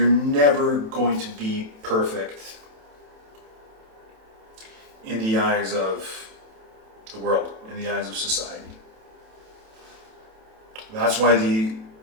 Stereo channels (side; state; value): left; late; 27 ms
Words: never going to be perfect in the eyes of the world, in the eyes of society. That's why the